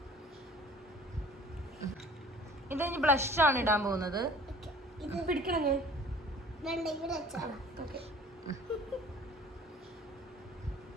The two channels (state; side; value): normal; both; correlation 0.49